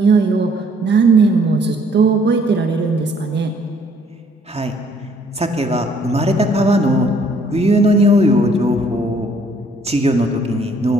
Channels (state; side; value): normal; both; correlation 0.63